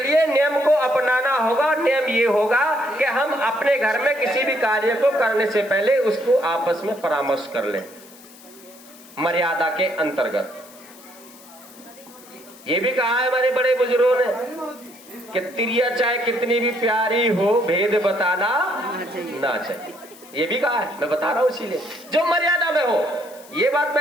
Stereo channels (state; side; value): noise; left; hiss, 22 dB below the sound